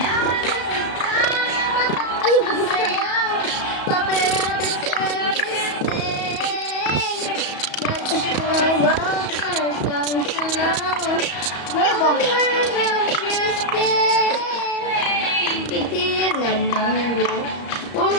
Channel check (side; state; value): right; late; 34 ms